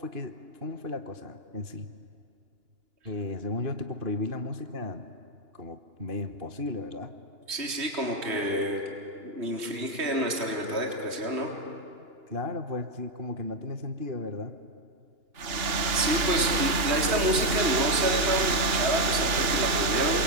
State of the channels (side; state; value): left; late; 2.9 ms